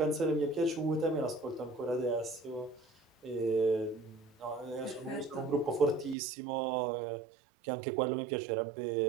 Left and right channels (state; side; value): drops out; left; at 6.2 s